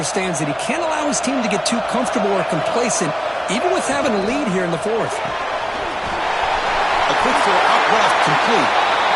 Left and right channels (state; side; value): identical; both; correlation 1.00